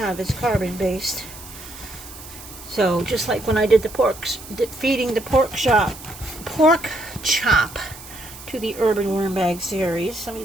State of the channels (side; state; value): right; noise; hiss, 16 dB below the sound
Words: is carbon based. So just like when I did the feeding the pork chop to the Urban Worm Bag series, let